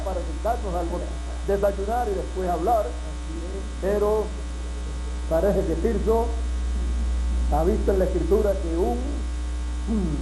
sentarnos al desayunar y después hablar. Pero parece que Tirso ha visto en la escritura que un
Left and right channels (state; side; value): identical; both; correlation 1.00